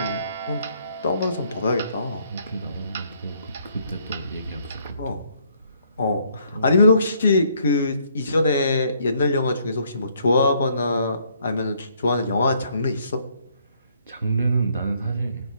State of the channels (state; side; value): inverted; both; correlation -0.68